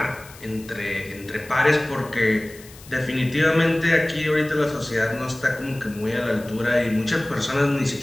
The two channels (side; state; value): left; noise; hiss, 20 dB below the sound